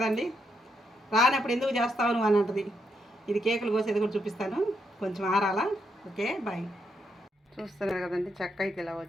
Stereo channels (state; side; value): normal; both; correlation 0.79